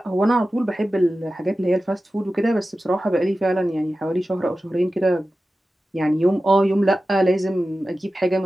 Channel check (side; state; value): both; normal; correlation 0.94